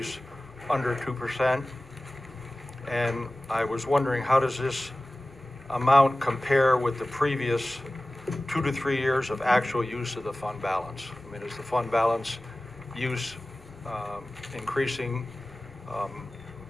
under 2%. And I was wondering, how does this amount compare with the previous 2 to 3 years of actual use of the fund balance? I mean, is the fund balance use increasing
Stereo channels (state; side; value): normal; both; correlation 0.97